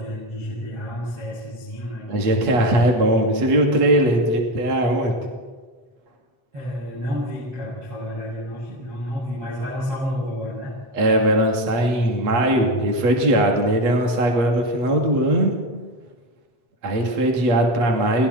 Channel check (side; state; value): left; late; 8.4 ms